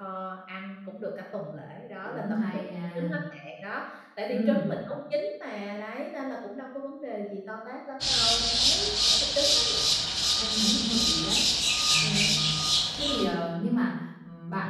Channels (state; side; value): identical; both; correlation 1.00